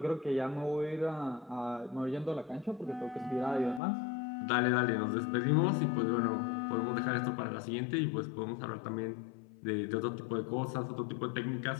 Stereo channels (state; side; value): drops out; right; at 3.8 s